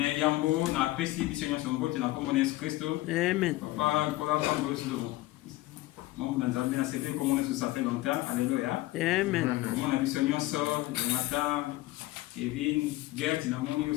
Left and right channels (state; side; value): quieter; right; 18.1 dB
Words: yambo na apesi biso nyonso mbote na kombo na Yesu Kristo. Amen. Papa kola pambo solo. Mambo na nzambe na sebe kombo na ça fait longtemps. Alléluia. Amen. Kombo na biso nyonso Jonathan, Kevin, Gert na moni